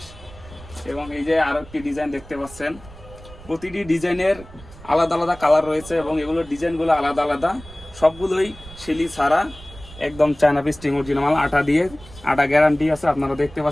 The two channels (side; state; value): right; noise; rumble, 19 dB below the sound